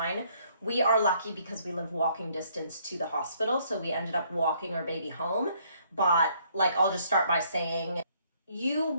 We are lucky because we live walking distance to the hospital, so we ended up walking our baby home. But I'll just start by saying, you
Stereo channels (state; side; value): inverted; both; correlation -0.66